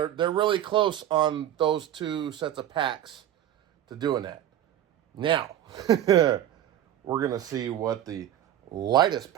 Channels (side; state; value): left; quieter; 11.4 dB